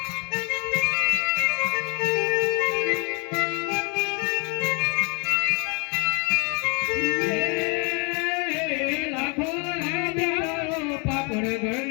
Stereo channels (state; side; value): quieter; right; 33.3 dB